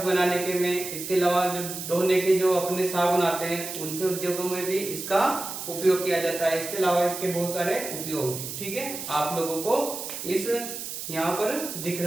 बनाने के में, इसके अलावा जो धोने के जो अपने साबुन आते हैं, उनके उद्योगों में भी इसका उपयोग किया जाता है। इसके अलावा इसके बहुत सारे उपयोग हैं। ठीक है, आप लोगों को इस यहाँ पर दिख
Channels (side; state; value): right; noise; hiss, 7 dB below the sound